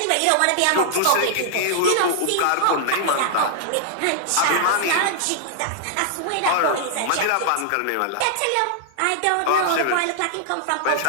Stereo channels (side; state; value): both; different; correlation -0.01